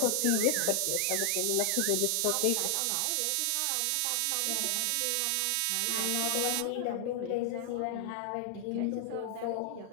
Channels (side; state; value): both; different; correlation 0.00